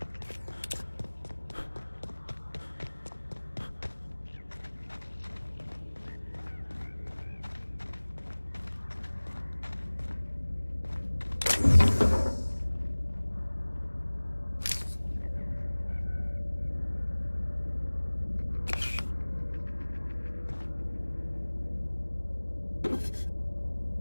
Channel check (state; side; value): inverted; both; correlation -1.00